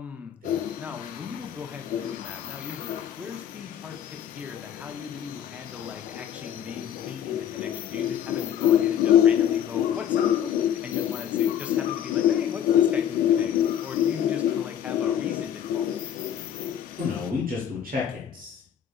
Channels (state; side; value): quieter; right; 9.6 dB